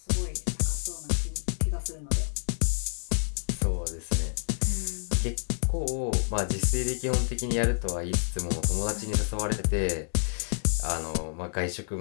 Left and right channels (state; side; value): silent; right; digital silence